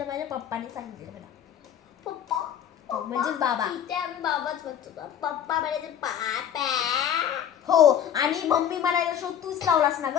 माझ्या पप्पाने सांगितलं मला, पप्पा म्हणजेच बाबा, इथे आम्ही बाबाच म्हणतो, पप्पा म्हणायचे पापा. हो, आणि मम्मी म्हणायला शो तूच लावलास ना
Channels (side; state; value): right; quieter; 9.4 dB